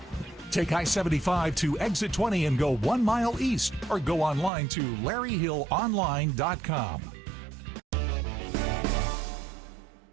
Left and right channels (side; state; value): left; drops out; at 4.5 s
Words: Take I-75 to exit 20 and go 1 mile east, or go online to LarryHillOnline.com.